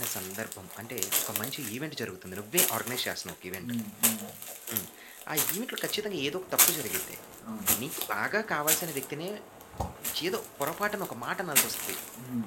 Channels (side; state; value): both; identical; correlation 1.00